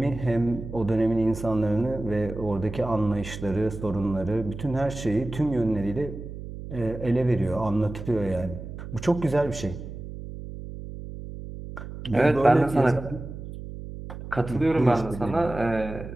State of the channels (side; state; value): right; noise; hum, 10 dB below the sound